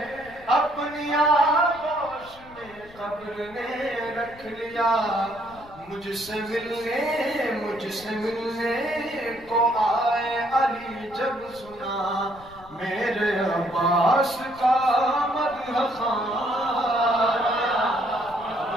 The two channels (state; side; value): noise; left; rumble, 22 dB below the sound